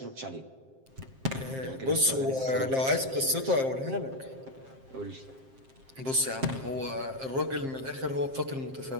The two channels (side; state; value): left; late; 7.5 ms